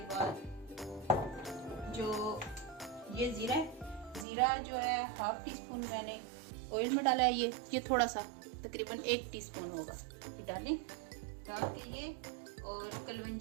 बाद जो ये ज़ीरा है, ज़ीरा जो है हाफ टी स्पून मैंने ऑयल में डाला है। ये थोड़ा सा तकरीबन 1 टीस्पून होगा, ये डाल के ये, और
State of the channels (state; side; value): drops out; left; at 4.2 s